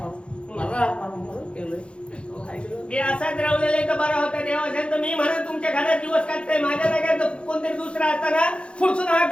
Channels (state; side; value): late; right; 0.057 ms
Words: म्हणून केलंय ऐकलं? ते असाच रावलेले तर बरा होता देवा असेल तर मी म्हणत तुमच्या घरात दिवस काढताय माझ्या जागेत तर कोणतरी दुसरा असताना पुढसून हात